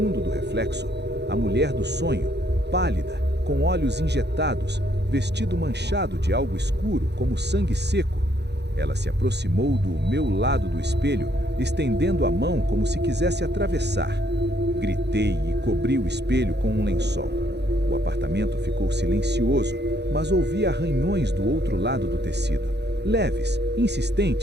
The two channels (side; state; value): left; late; 0.49 ms